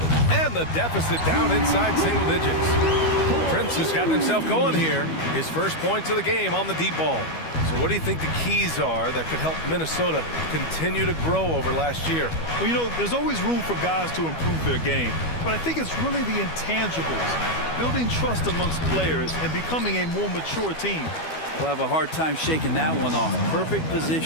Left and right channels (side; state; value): right; late; 12 ms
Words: And the deficit down inside single digits. Prince has gotten himself going here. His first points of the game on the deep ball. So what do you think the keys are that could help Minnesota continue to grow over last year? Well, you know, there's always room for guys to improve their game. But I think it's really the intangibles, building trust amongst players and becoming a more mature team. We'll have a hard time shaking that one off. Perfect